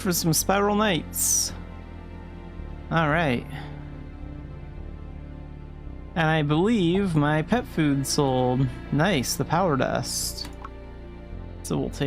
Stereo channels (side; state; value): both; identical; correlation 1.00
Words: some Spiral Knights. Alright. And I believe my pet food sold. Nice, the power dust. So we'll